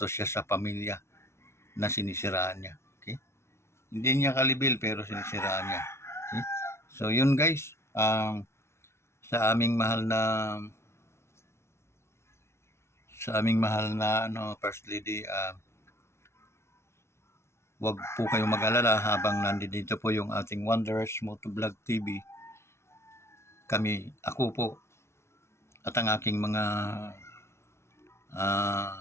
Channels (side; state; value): right; late; 0.13 ms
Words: siya sa pamilya na sinisiraan niya. Okay? Hindi niya kalibil pero sinisiraan niya. Okay? So yun guys, sa aming mahal na first lady, wag po kayong mag-alala habang nandito po yung ating Wanderers Motovlog TV. Ako po at ang aking mga